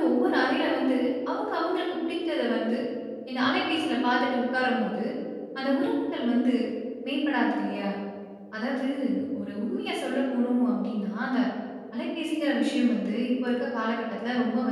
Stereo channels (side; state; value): both; identical; correlation 1.00